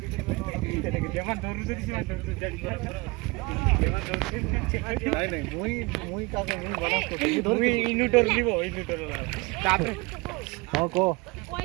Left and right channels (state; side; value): quieter; left; 25.9 dB